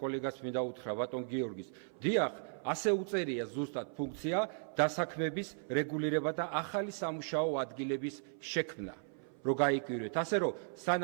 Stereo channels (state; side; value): silent; left; 54 dB below the other